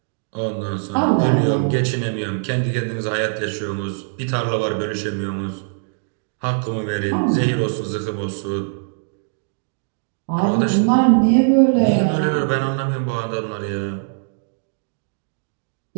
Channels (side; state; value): left; silent; digital silence